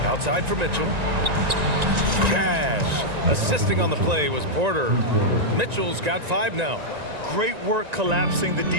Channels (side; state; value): left; late; 1.9 ms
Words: Outside for Mitchell. Cash. Assisting on the play was Porter. Mitchell's got 5 now. Great work collapsing the